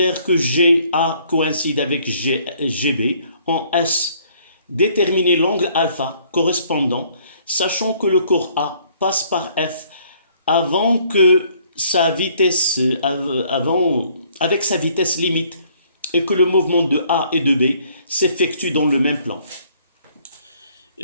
que GA coïncide avec GB. En S, déterminer l'angle alpha correspondant, sachant que le corps A passe par F avec sa vitesse limite et que le mouvement de A et de B s'effectue dans le même plan.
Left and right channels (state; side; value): inverted; both; correlation -0.63